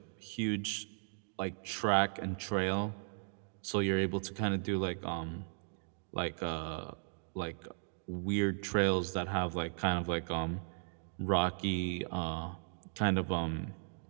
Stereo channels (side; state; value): left; silent; digital silence